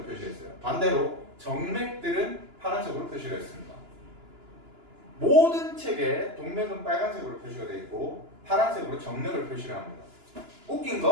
표시했어요. 반대로 정맥들은 파란색으로 표시를 했습니다. 모든 책에 동맥은 빨간색으로 표시가 되어 있고 파란색으로 정맥을 표시를 합니다. 웃긴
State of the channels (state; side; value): late; left; 2.9 ms